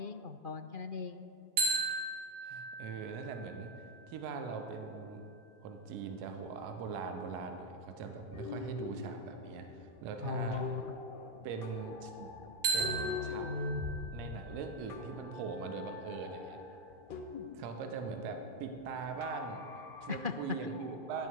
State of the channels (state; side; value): late; left; 2.4 ms